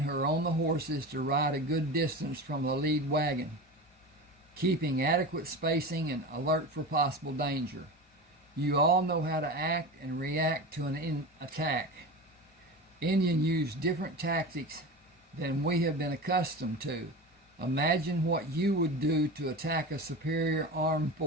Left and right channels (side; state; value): both; normal; correlation 0.28